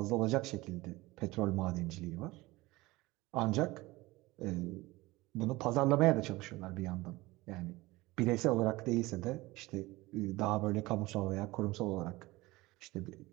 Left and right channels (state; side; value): quieter; left; 20.5 dB